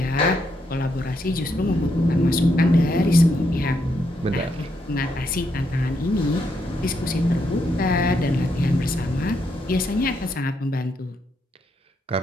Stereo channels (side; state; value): both; normal; correlation 0.78